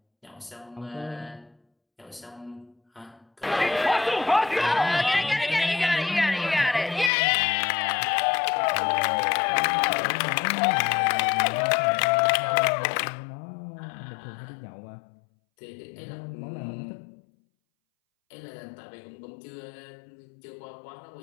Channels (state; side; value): drops out; right; at 7.1 s